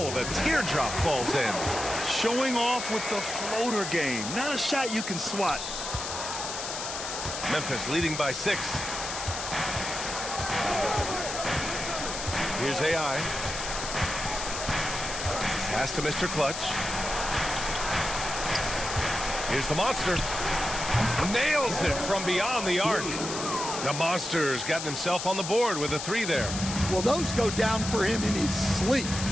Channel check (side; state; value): left; noise; hiss, 6 dB below the sound